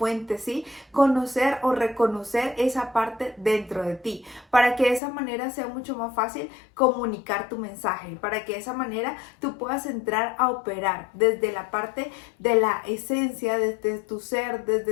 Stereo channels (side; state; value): right; drops out; at 5.0 s